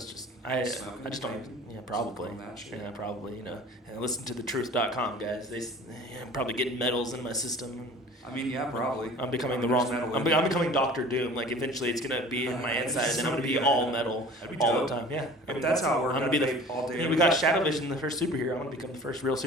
just I just don't. Yeah, probably. Yeah, probably. And listen to thetruth.com, guys. I'm probably getting metals in my system. I mean, yeah, probably. I'm becoming the wrong. I'm becoming Doctor Doom. Like eventually, it's gonna be in my inside, and then I'm gonna be all metal all the time. Yeah, if that's how it works. I'm gonna be all day. We got Shadow Vision, the first superhero. I'm gonna become the first real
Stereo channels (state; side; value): normal; both; correlation 0.44